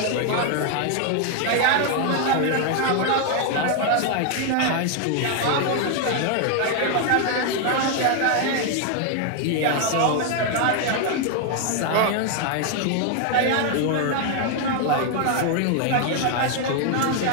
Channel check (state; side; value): different; both; correlation 0.01